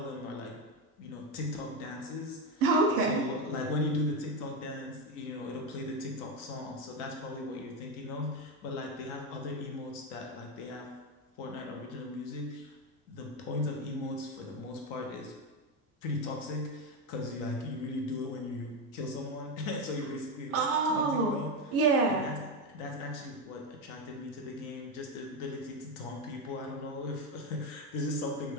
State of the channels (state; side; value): normal; both; correlation 0.12